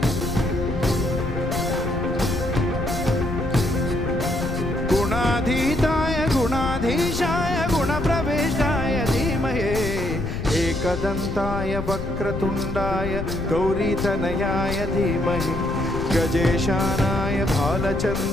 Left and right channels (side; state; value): left; noise; rumble, 5 dB below the sound